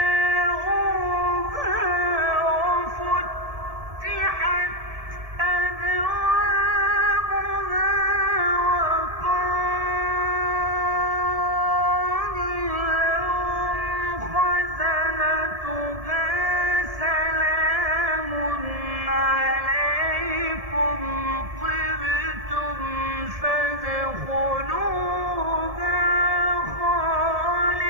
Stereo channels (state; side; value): late; left; 1.7 ms